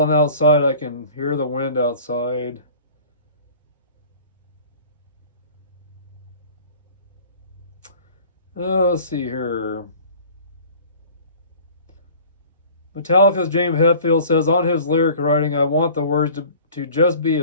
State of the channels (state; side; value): inverted; both; correlation -0.46